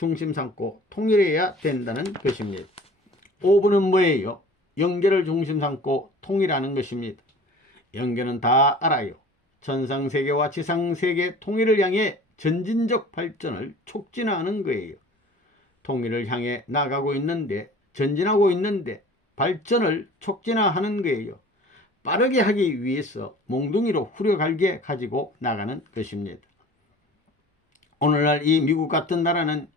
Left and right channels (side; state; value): both; normal; correlation 0.44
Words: 삼고 통일해야 된다는 것입니다. 5번은 뭐예요? 영계를 중심 삼고 통일하는 것입니다. 영계는 다 알아요. 천상세계와 지상세계 통일을 향해 전진적 발전을 촉진하는 거예요. 통일을 향해 나가고 있는데, 전진하고 있는데 발전을 촉진하는 거예요. 빠르게 하기 위해서 몽둥이로 후려갈게 가지고 나가는 것입니다. 오늘날 이 미국 같은 나라는